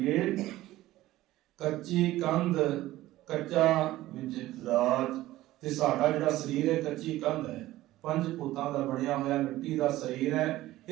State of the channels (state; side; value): quieter; left; 16.1 dB